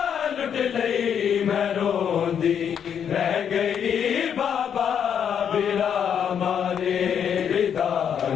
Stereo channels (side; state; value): right; quieter; 8.2 dB